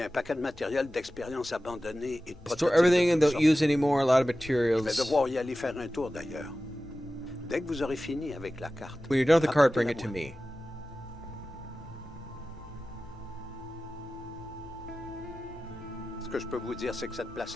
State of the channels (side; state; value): both; normal; correlation 0.95